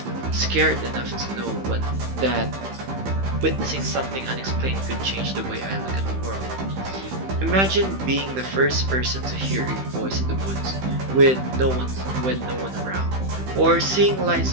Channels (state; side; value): late; left; 15 ms